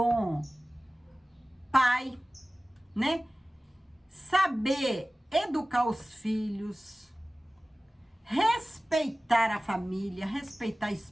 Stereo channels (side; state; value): both; normal; correlation 0.97